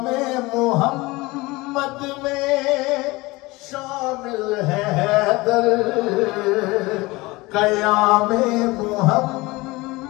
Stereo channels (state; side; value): quieter; right; 22.1 dB